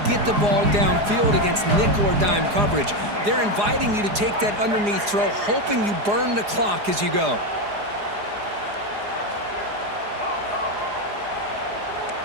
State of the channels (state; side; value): late; left; 4.8 ms